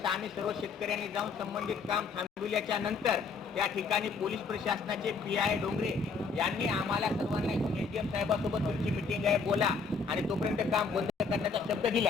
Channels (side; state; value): right; quieter; 4.9 dB